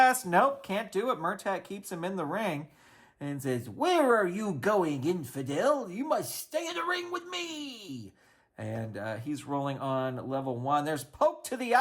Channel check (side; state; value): both; identical; correlation 1.00